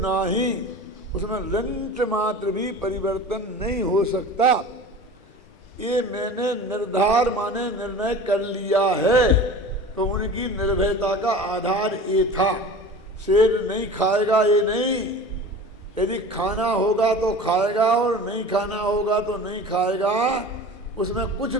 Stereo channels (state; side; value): normal; both; correlation 0.37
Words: उसमें रंच मात्र भी परिवर्तन नहीं हो सकता। ये मैंने निर्धार माने निर्णय कर लिया है। तो उनकी निर्भयता का आधार ये था। शेर नहीं खाएगा ये नहीं, यदि खाना होगा तो खाएगा और नहीं खाना होगा तो नहीं खाएगा, उसमें कुछ